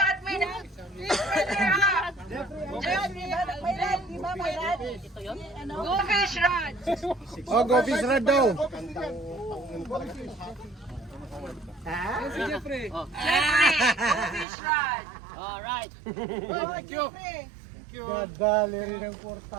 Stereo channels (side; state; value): left; drops out; at 14.5 s